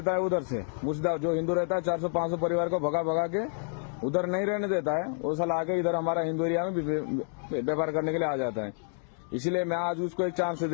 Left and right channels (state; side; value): silent; right; 59 dB below the other